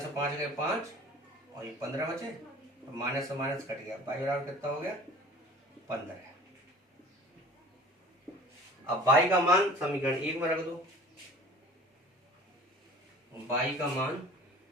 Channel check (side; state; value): both; normal; correlation 0.45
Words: 5 गए 5 और ये 15 बचे, तो माइनस से माइनस कट गया, y बराबर कितना हो गया 15। अब y का मान समीकरण 1 में रख दो, y का मान